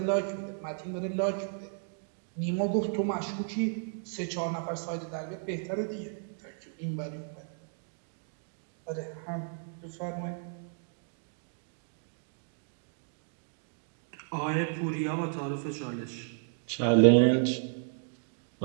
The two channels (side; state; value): left; silent; 56 dB below the other